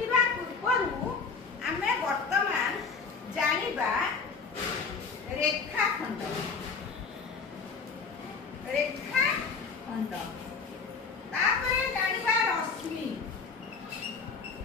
पूर्वरु हमें वर्तमान जानिबा रेखाखंड तापरे जानिबा रश्मि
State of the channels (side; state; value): right; quieter; 5.1 dB